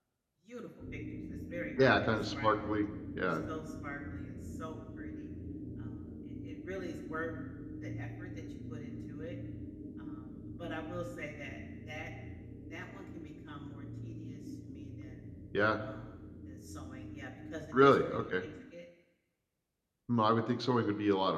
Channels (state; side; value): identical; both; correlation 1.00